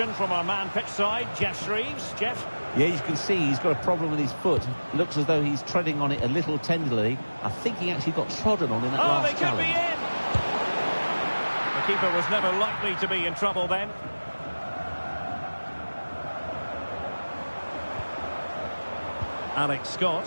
from our man pitch side, Jeff Shreves. Jeff? Yeah, you can see he's got a problem with his foot. Looks as though he's treading on it a little tenderly. I think he actually got trodden on in that last challenge. They could be in! The keeper was never likely to be in trouble then. Alex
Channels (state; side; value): inverted; both; correlation -1.00